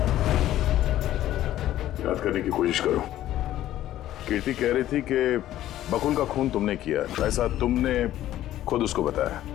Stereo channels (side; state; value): right; quieter; 13.3 dB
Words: याद करने की कोशिश करो। कीर्ति कह रही थी कि बकुल का खून तुमने किया, ऐसा तुमने खुद उसको बताया।